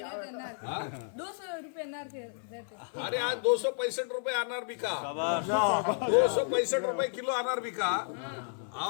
रहते अनार, 200 रुपये अनार के रहते। अरे आज 265 रुपए अनार बिका, शाबाश। 265 रुपए किलो अनार बिका।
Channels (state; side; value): silent; right; 57 dB below the other